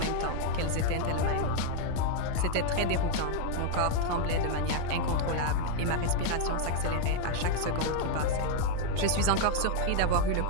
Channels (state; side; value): different; both; correlation 0.00